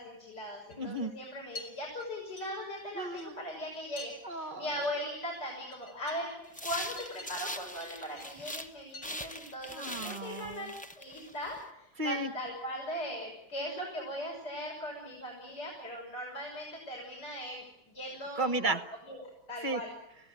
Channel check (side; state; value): both; normal; correlation 0.09